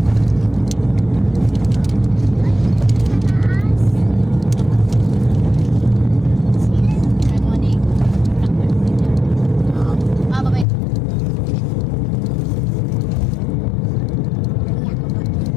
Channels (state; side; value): drops out; right; at 10.7 s